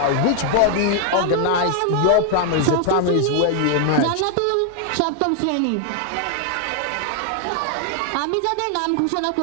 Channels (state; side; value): different; both; correlation 0.00